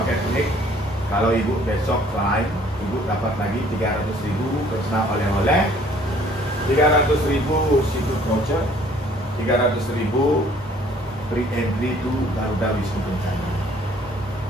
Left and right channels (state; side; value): normal; both; correlation 0.57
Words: unik. Kalau Ibu besok lain, Ibu dapat lagi 300.000 personal oleh-oleh, 300.000 seafood voucher, 300.000 free entry to Garuda Wisnu Kencana.